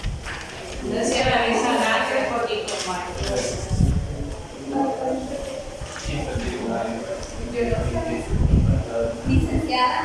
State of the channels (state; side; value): identical; both; correlation 1.00